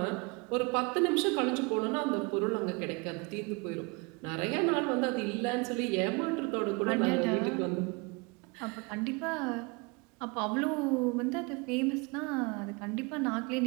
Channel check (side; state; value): left; quieter; 29.0 dB